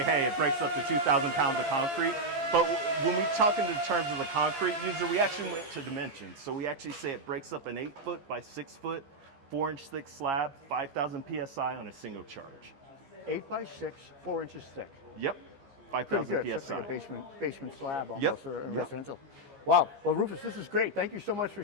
hey, it breaks up to 2,000 pounds of concrete. But when we talk in terms of the concrete user, we actually went to dimensions. So we actually say it breaks up an 8 foot by 6 foot, 4-inch thick slab, 5,000 PSI on a single charge. 8 by 6, 4 inches thick. Yep. Pretty 5,000 good. PSI. It's like a basement slab almost, Yep. or a Yep. residential. Wow. Well, Rufus, this is great. Thank you so much for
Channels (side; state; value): left; late; 15 ms